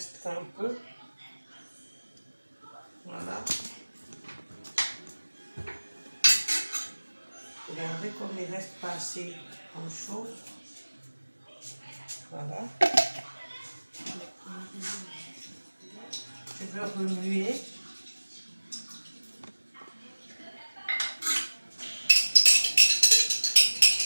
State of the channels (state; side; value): inverted; both; correlation -1.00